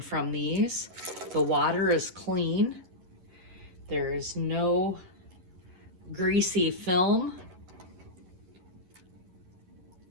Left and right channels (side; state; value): left; late; 11 ms